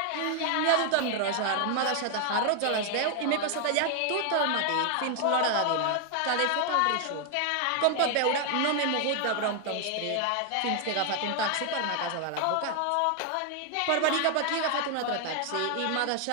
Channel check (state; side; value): different; both; correlation 0.00